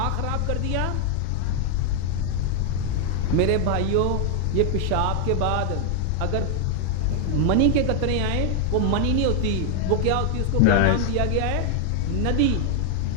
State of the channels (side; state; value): both; different; correlation 0.00